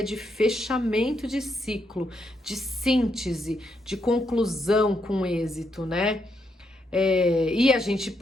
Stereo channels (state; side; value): normal; both; correlation 0.78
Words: de fechamento de ciclo, de síntese, de conclusão com êxito, né? E a gente